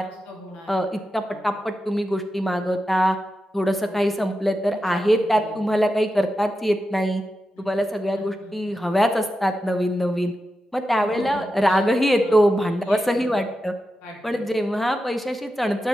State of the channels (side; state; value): both; normal; correlation 0.90